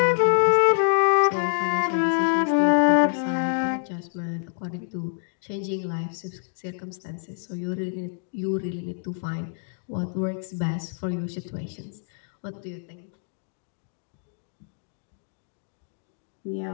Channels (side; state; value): right; silent; digital silence